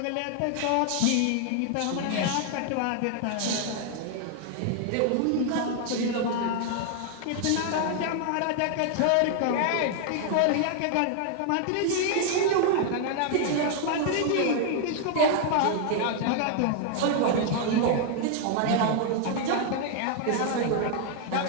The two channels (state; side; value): different; both; correlation 0.00